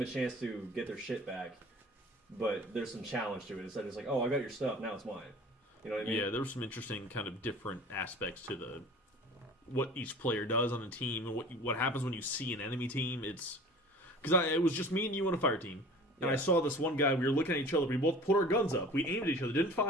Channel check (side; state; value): both; normal; correlation 0.42